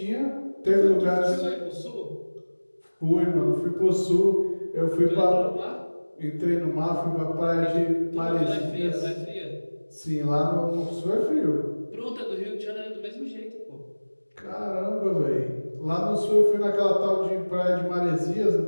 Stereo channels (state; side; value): inverted; both; correlation -1.00